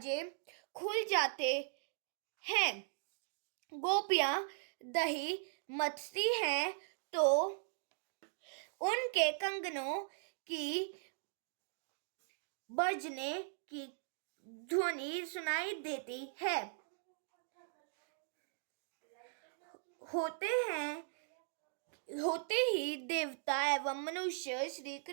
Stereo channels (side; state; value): left; silent; digital silence